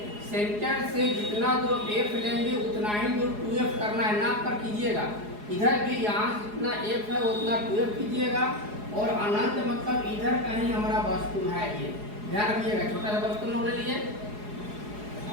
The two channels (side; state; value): left; late; 4.8 ms